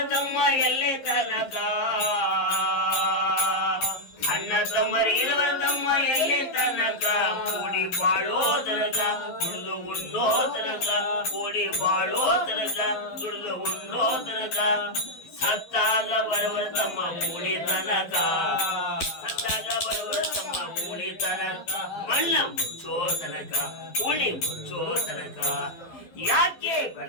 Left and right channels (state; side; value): late; right; 11 ms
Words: ತಮ್ಮ ಎಲ್ಲಿ ತನಕ ಅಣ್ಣ ತಮ್ಮರು ಇರುವರ ತಮ್ಮ ಎಲ್ಲಿ ತನಕ ಕೂಡಿ ಬಾಳೋ ತನಕ ದುಡಿದು ಉಣ್ಣೋ ತನಕ ಕೂಡಿ ಬಾಳೋ ತನಕ ದುಡಿದು ಉಣ್ಣೋ ತನಕ ಸತ್ತಾಗ ಬರುವರ ತಮ್ಮ ಕೂಡಿ ತನಕ ಸತ್ತಾಗ ಬರುವರ ತಮ್ಮ ಕೂಡಿ ತನಕ ಮಣ್ಣ ಮುಚ್ಚೋ ತನಕ ಕೂಡಿ ಮುಚ್ಚೋ ತನಕ ಯಾಕೆ